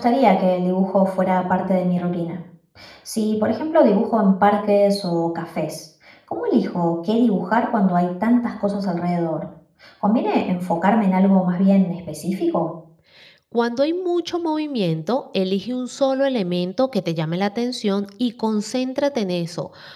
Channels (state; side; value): identical; both; correlation 1.00